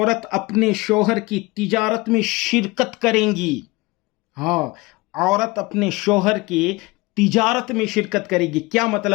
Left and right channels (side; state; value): right; quieter; 22.9 dB